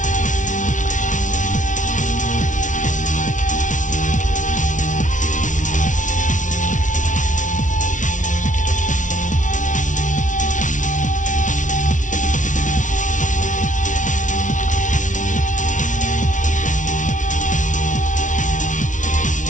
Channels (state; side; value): late; right; 0.37 ms